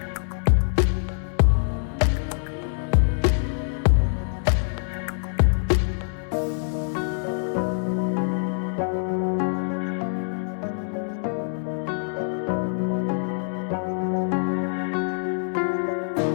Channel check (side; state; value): right; silent; 60 dB below the other